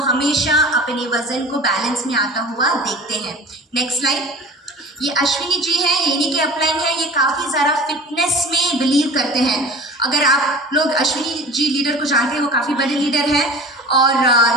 हमेशा अपने वजन को बैलेंस में आता हुआ देखते हैं। नेक्स्ट स्लाइड, ये अश्विनी जी हैं, ये इन्हीं के अपलाइन है, ये काफ़ी ज़्यादा फिटनेस में बिलीव करते हैं। अगर आप लोग अश्विनी जी लीडर को जानते हैं, वो काफ़ी बड़े लीडर हैं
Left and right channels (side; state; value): both; normal; correlation 0.38